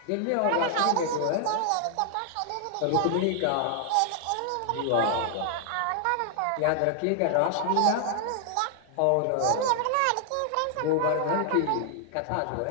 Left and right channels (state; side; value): different; both; correlation 0.00